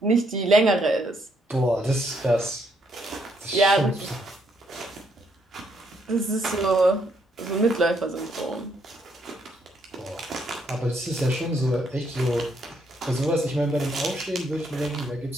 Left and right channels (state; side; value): normal; both; correlation 0.73